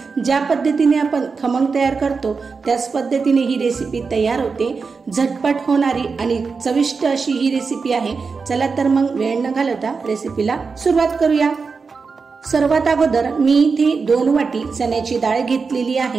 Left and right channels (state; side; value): quieter; left; 4.9 dB